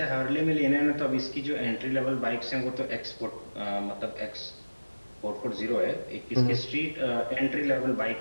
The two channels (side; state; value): both; inverted; correlation -1.00